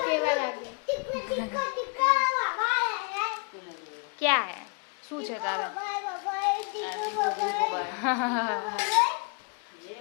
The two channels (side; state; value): right; quieter; 36.2 dB